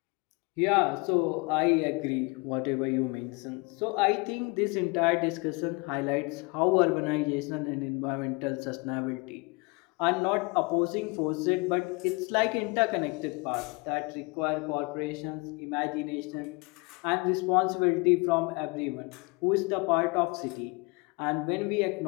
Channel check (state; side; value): quieter; right; 28.7 dB